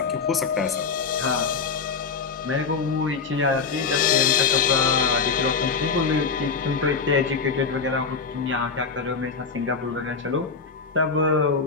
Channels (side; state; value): right; quieter; 5.2 dB